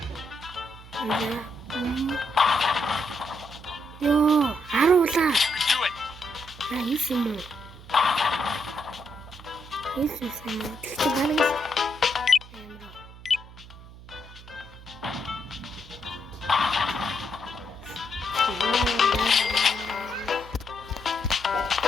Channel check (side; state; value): right; noise; hum, 18 dB below the sound